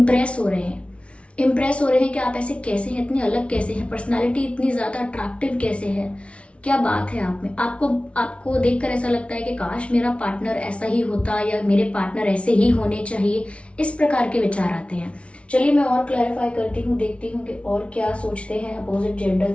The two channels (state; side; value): late; right; 0.061 ms